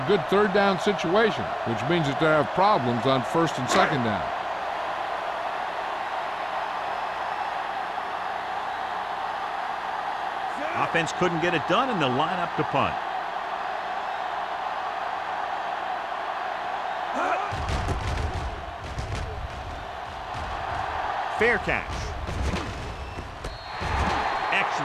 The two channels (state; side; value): identical; both; correlation 1.00